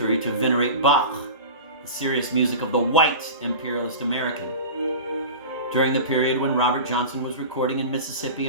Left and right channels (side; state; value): both; inverted; correlation -0.33